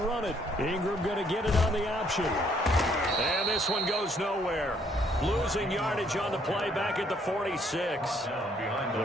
it. Ingram going to get it on the option. And this one goes nowhere. Losing yardage on the play back at the 46.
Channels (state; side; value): normal; both; correlation 0.67